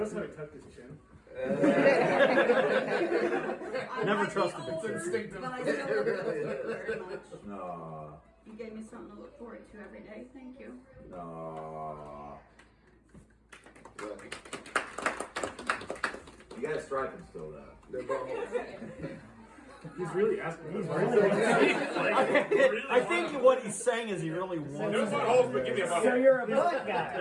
how he tucked his chin? Never trusted the It's kid. but I still love you very much. No. You gave me something to look forward to every day. Thank you. No. You got striping still though. They're buttholes. He's really asking. He's I think what he's saying is he really wants. No buttholes, but give me a butthole. So you're a butt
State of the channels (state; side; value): identical; both; correlation 1.00